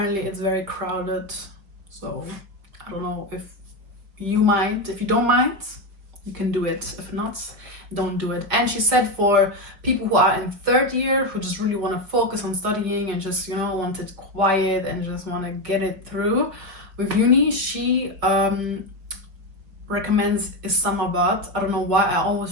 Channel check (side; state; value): left; late; 4.7 ms